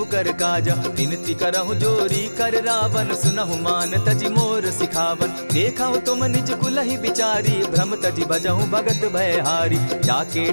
कर काजा। विनती करहु जोरी कर रावण, सुनहु मान तजि मोर सिखावन। देखहु तुम निज कुलहि बिचारी, भ्रम तजि भजहु भगत भयहारी। जाके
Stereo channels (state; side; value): inverted; both; correlation -1.00